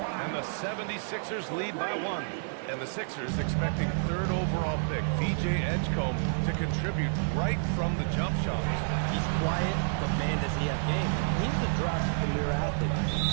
And the 76ers lead by 1. And the Sixers expecting 3rd overall pick, VJ Edgecombe, to contribute right from the jump shots. He's quiet, but man, does he have game. And he's a draft premier athlete. He's a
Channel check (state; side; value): silent; left; digital silence